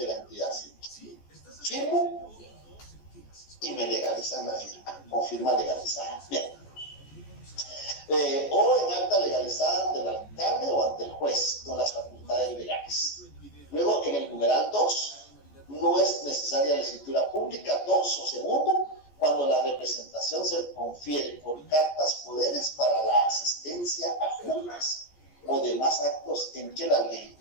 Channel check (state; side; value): late; right; 14 ms